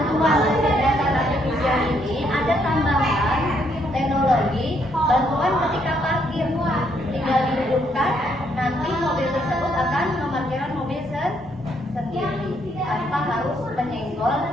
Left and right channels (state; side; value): normal; both; correlation 0.72